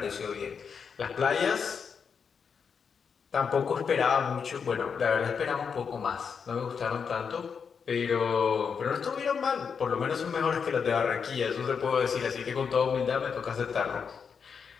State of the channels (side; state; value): right; quieter; 6.3 dB